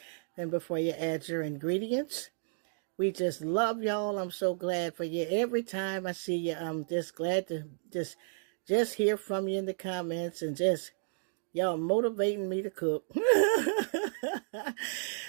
And before you add your ingredients, we just love y'all. I'm so glad for you. Every time I see you, I'm just glad to just hear from you in the comments and just y'all motivating me to cook.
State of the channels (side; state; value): left; silent; digital silence